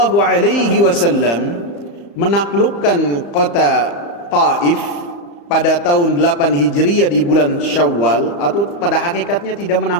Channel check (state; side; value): late; right; 35 ms